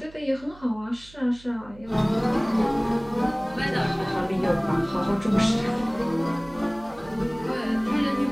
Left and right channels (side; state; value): right; noise; hum, 22 dB below the sound